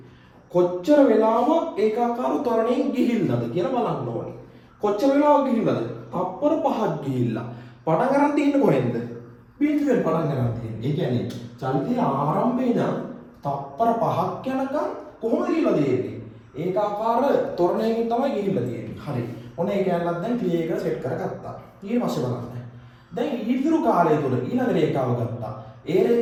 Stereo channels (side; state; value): both; identical; correlation 1.00